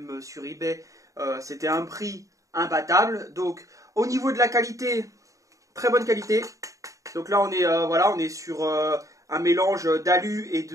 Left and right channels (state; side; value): late; left; 0.16 ms